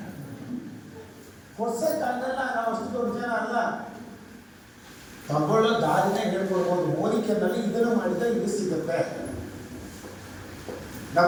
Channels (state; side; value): identical; both; correlation 1.00